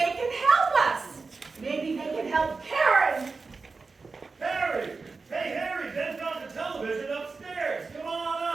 can help us. Maybe they can help Karen. Harry! Hey, Harry, Ben's got the television upstairs. Come on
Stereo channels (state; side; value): quieter; left; 4.3 dB